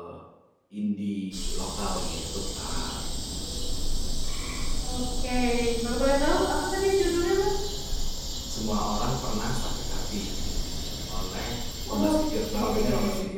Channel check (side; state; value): both; identical; correlation 1.00